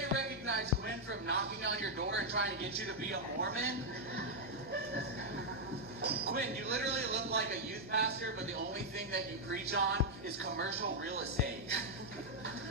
recognize Quinn from knocking on your door and trying to get you to be a Mormon. Quinn, you literally look like a youth pastor, but the only thing that you preach on is commercial real estate.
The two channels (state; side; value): normal; both; correlation -0.01